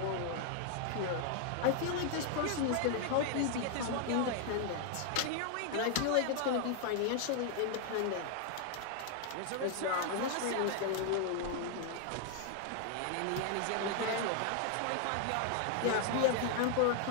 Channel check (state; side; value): different; both; correlation 0.00